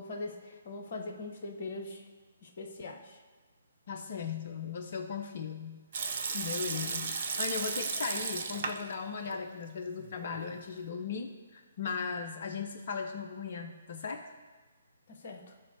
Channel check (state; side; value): inverted; both; correlation -0.58